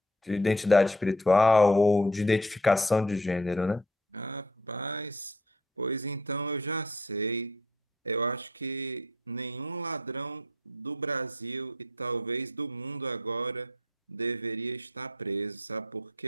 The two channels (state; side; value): normal; both; correlation 0.55